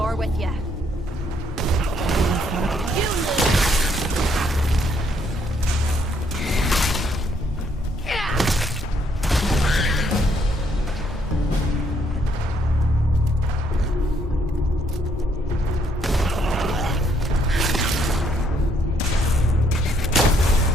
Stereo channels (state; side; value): normal; both; correlation 0.70